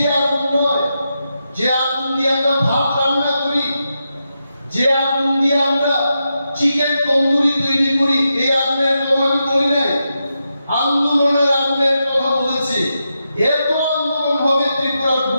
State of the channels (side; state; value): both; inverted; correlation -0.87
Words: আগুন নয় যে আগুন দিয়ে আমরা ভাত রান্না করি যে আগুন দিয়ে আমরা চিকেন তন্দুরি তৈরি করি এই আগুনের কথা আমি বলি নাই আন্দোলনের আগুনের কথা বলেছি এত আন্দোলন হবে ত্রিপুরার